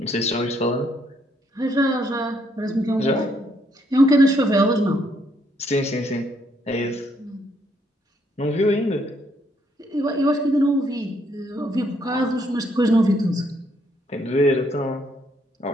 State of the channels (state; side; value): normal; both; correlation 0.71